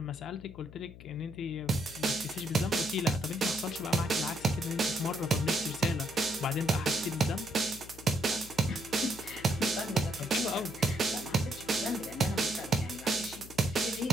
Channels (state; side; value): noise; left; hum, 16 dB below the sound